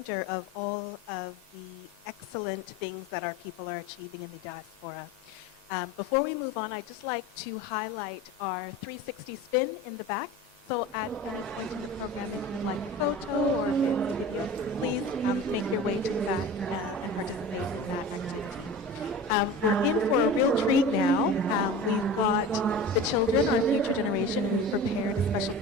of all of the excellent things that our people are achieving in the diaspora. Before we move on, I'd just like to highlight our 360 spin in the back. So at any point in the program, if you'd like a photo or a fancy video, please make your way to the back and participate in that activity. We're in for a real treat now. We've got the children, our future generation, who prepared a special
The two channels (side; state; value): both; normal; correlation 0.35